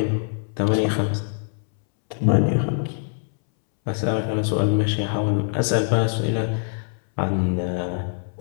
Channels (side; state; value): right; silent; 63 dB below the other